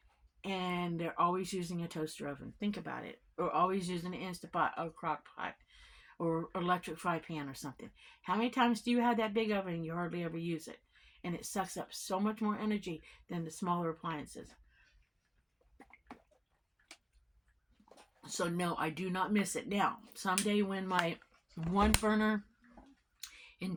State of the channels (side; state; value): both; identical; correlation 1.00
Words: and they're always using a toaster oven? Think about it. Or always using an Instapot or crock pot or electric fry pan or something. How many times do you have that big oven and you hardly ever use it? And it sucks up so much more energy than the smaller appliances. So no, I do not miss it. Now, someday when my 1-burner